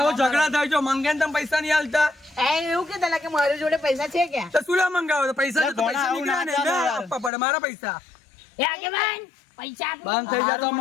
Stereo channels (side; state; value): right; drops out; at 7.3 s